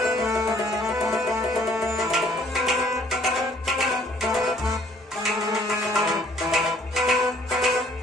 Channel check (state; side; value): normal; both; correlation 0.60